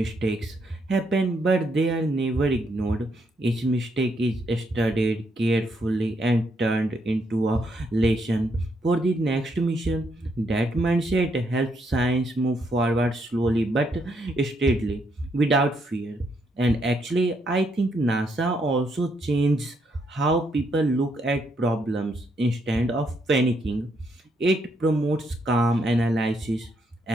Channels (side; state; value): both; normal; correlation 0.75